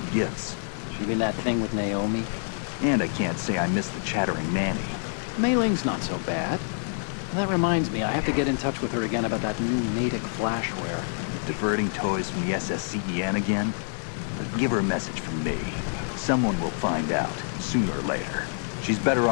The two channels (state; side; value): silent; right; 57 dB below the other